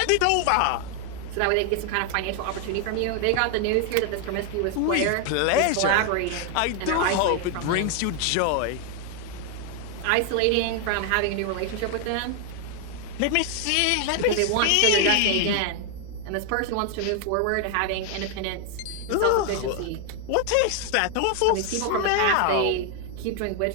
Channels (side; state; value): both; different; correlation 0.01